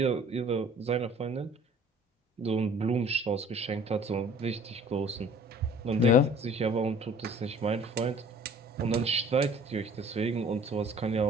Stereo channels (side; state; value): both; normal; correlation 0.51